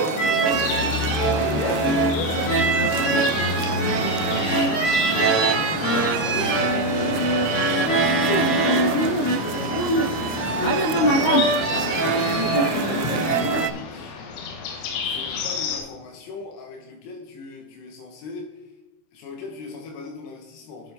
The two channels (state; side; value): late; right; 26 ms